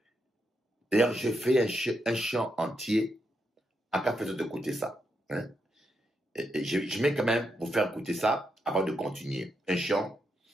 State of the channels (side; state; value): both; normal; correlation 0.82